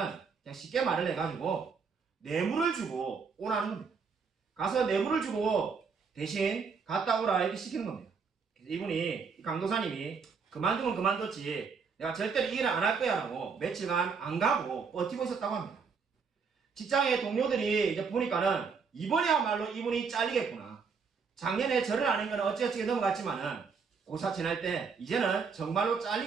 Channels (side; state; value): left; quieter; 5.5 dB